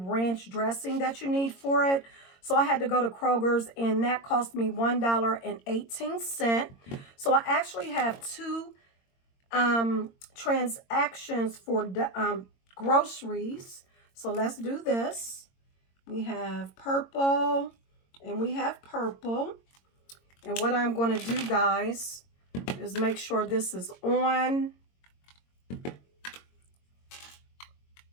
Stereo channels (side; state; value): right; late; 22 ms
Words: dressing that you need for it. So I had to go to Kroger's and that cost me $1.18. So I actually have two transactions for groceries. So let's do this. We have purple and we have purple. And what I'm going to do, guys, is make sure this is on.